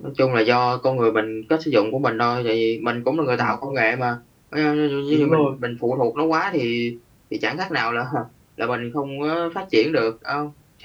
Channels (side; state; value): both; identical; correlation 1.00